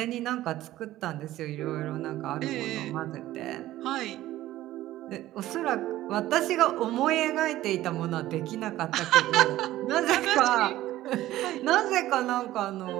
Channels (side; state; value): left; quieter; 15.0 dB